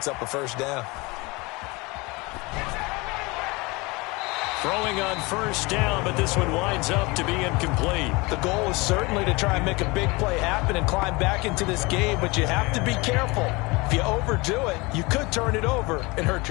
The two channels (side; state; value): right; quieter; 24.9 dB